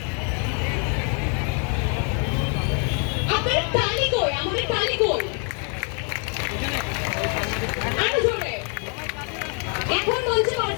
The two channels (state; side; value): quieter; right; 38.8 dB